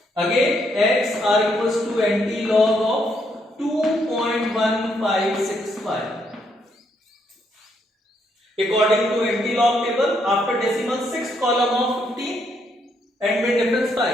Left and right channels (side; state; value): both; normal; correlation 0.74